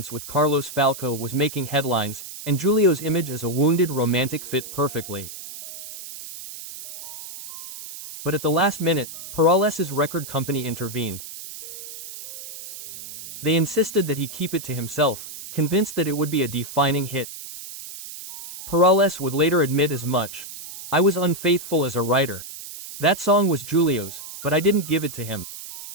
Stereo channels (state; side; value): noise; right; hiss, 12 dB below the sound